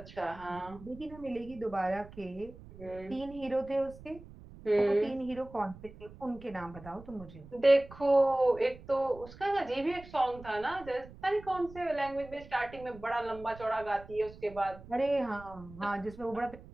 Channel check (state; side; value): noise; right; rumble, 18 dB below the sound